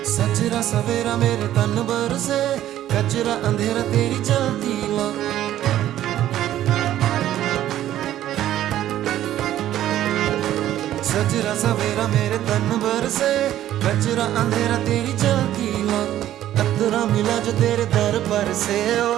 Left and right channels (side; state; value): left; quieter; 12.6 dB